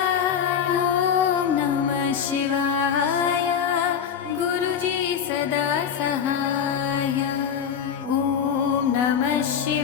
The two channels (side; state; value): right; quieter; 7.7 dB